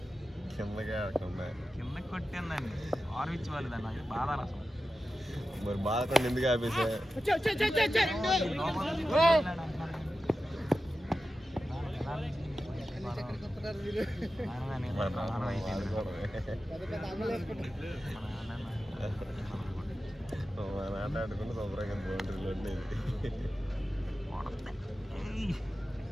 కింద కొట్టిందండి. ఆర్విచ్ వాళ్ళు దాన్ని బాధ అసలు. మరి బాధకుండా ఎందుకు ఆపేసా? ఆటాడుకుంటే శుభ్రంగా బౌండరీలో ఉండేది.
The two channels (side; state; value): both; normal; correlation 0.93